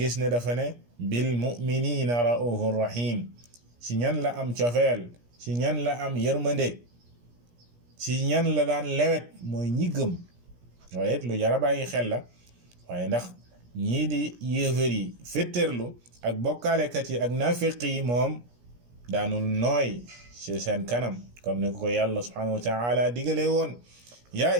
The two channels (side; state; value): left; late; 17 ms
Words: ne dafa ne bil mu'minina ra'ufur rahim. si ñan la am cofeel si ñan la am yërmande si ñan la daan lewet mooy ñi gëm. waaye it lu jara bàyyi xel la waaye ndax ñii di yéefar yi fétterlu ak bokkaalekat yi ak nafiq yi moom daanul nooy ci seen kanam comme ni ko yàlla subhanahu wa ta'ala digalee woon ya